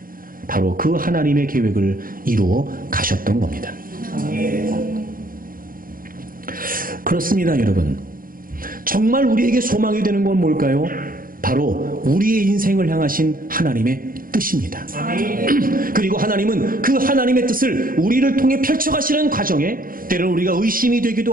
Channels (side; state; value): left; late; 0.41 ms